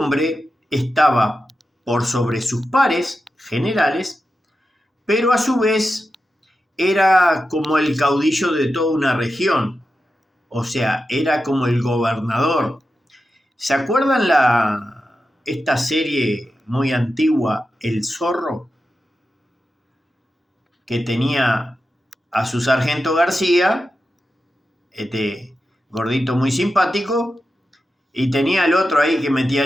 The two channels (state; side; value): normal; both; correlation 0.91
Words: estaba por sobre sus pares generales, pero a su vez era como el caudillo de toda una región, o sea, era como el gobernador. ¿Se acuerdan esta serie muy antigua, El Zorro? Que tenía a su sargento García, este gordito muy simpático, y tenía al otro ahí que metía